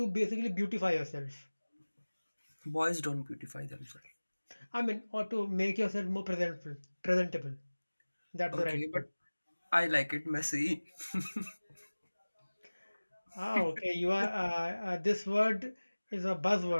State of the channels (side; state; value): both; inverted; correlation -1.00